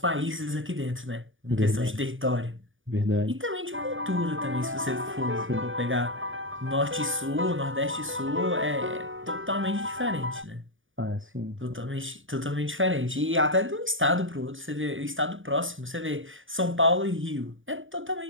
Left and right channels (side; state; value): left; late; 0.57 ms